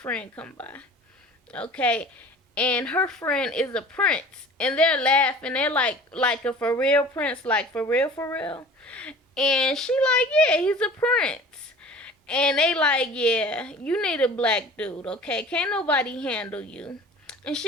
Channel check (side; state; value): both; normal; correlation 0.43